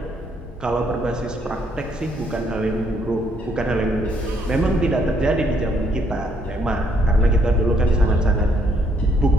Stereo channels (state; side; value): normal; both; correlation 0.69